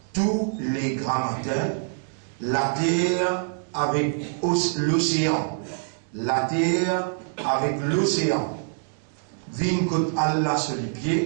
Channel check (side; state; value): left; silent; digital silence